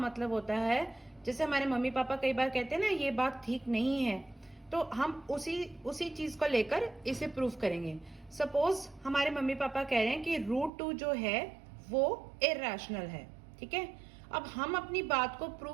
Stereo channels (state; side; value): drops out; left; at 10.7 s